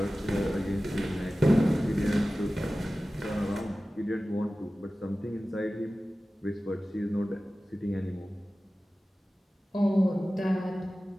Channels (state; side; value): normal; both; correlation 0.96